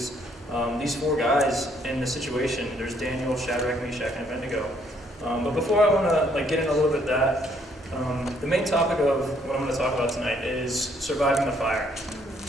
these four guys in the situation. There's Daniel, Shadrach, Meshach, and Abednego. But before I want to get in a little bit of that, the main topic of what I'm going to talk about tonight is surviving the fire.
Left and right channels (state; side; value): normal; both; correlation 0.68